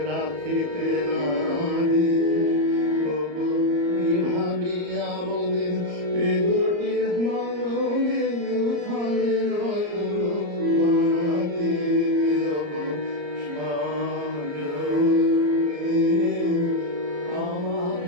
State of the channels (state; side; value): late; left; 34 ms